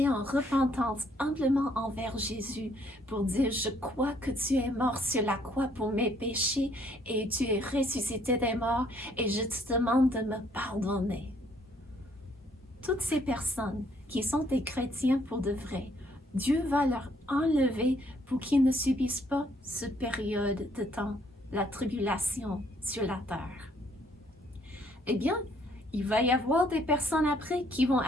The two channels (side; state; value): both; normal; correlation 0.66